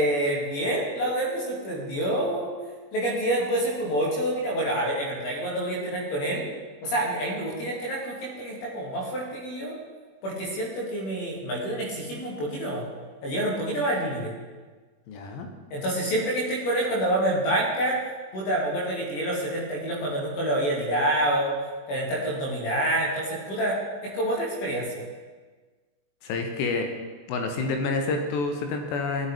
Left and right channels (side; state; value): right; late; 21 ms